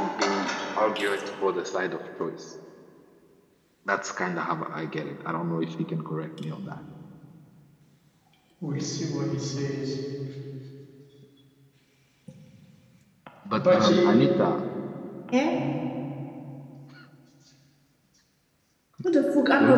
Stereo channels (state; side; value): identical; both; correlation 1.00